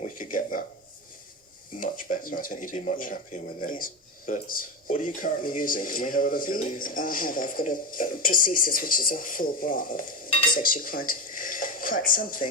we could get that much better. I think you'd be much happier with it. Yeah. But what are you currently using? Can we have a look at these? I've got a prosthesis, which is a full bra. is actually quite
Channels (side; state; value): both; normal; correlation 0.15